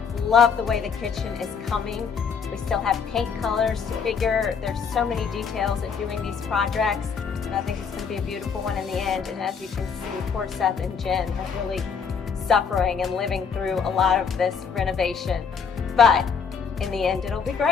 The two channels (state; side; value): quieter; right; 6.2 dB